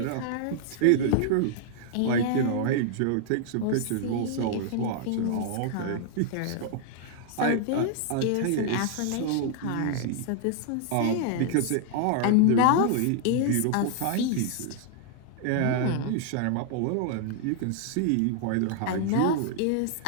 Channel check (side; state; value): both; different; correlation 0.00